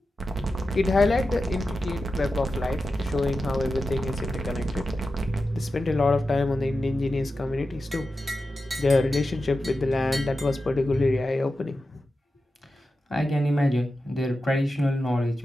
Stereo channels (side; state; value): both; normal; correlation 0.92